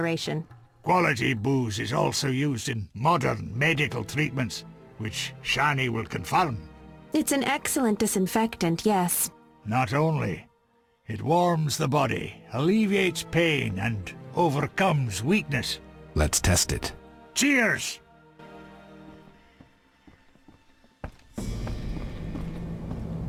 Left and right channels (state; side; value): identical; both; correlation 1.00